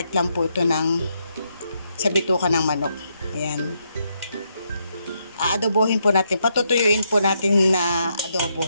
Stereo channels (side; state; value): both; inverted; correlation -0.78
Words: lang po ito sa bituka ng manok. Ayan. Aadobohin po natin. Patutuyuin po natin na